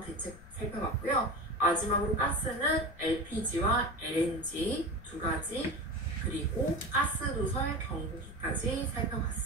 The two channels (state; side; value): noise; left; rumble, 18 dB below the sound